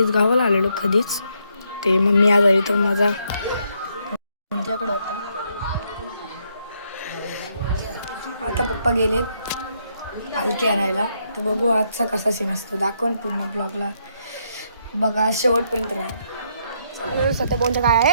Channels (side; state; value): both; inverted; correlation -0.74